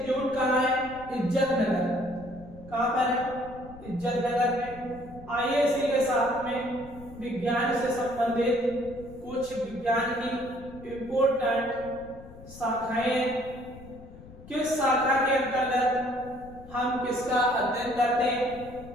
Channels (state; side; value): noise; left; rumble, 18 dB below the sound